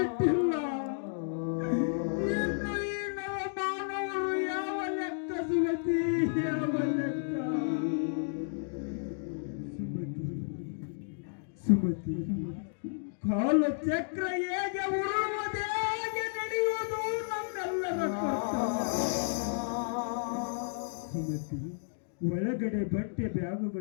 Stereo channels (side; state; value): right; silent; digital silence